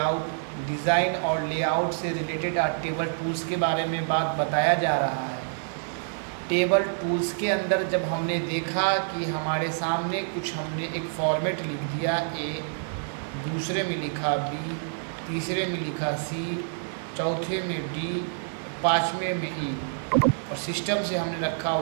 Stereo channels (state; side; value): silent; left; digital silence